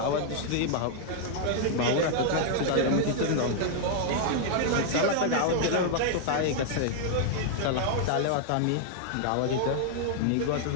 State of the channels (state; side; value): different; both; correlation 0.00